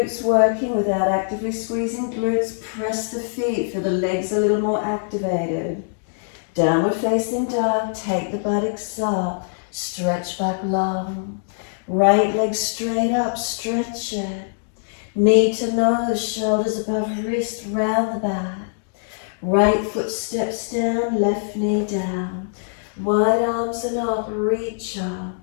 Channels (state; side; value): silent; right; digital silence